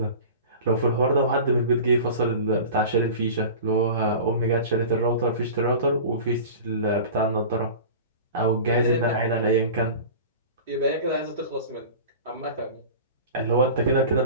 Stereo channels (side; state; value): both; inverted; correlation -0.36